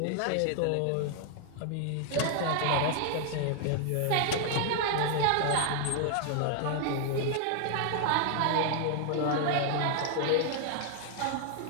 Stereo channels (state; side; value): different; both; correlation 0.00